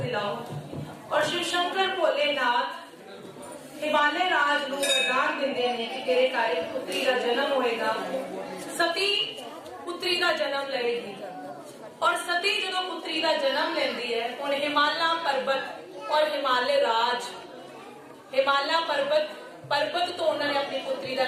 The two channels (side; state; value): both; identical; correlation 1.00